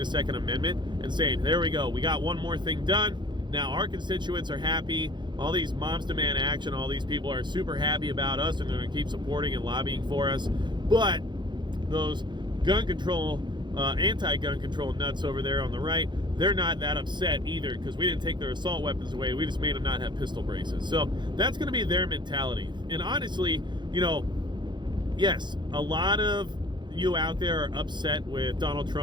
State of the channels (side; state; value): left; late; 0.22 ms